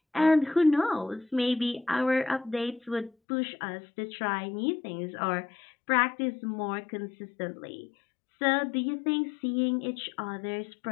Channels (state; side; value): drops out; right; at 3.1 s